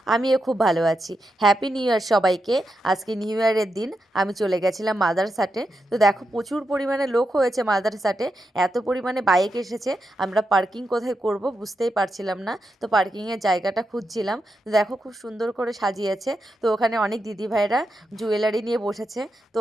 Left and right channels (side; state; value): both; normal; correlation 0.86